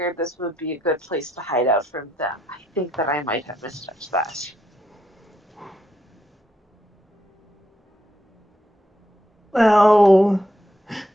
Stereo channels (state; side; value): normal; both; correlation 0.78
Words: this would be a good place to hide out from them. I think that I might have misjudged that. Well,